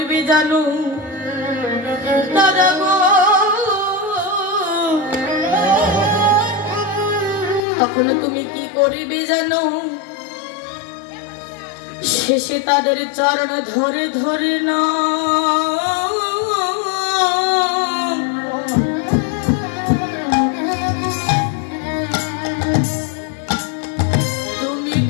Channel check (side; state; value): right; drops out; at 7.6 s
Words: জানো দাদা গো? তখন তুমি কি করবে জানো? শেষে তাদের চরণ ধরে ধরে না তুমি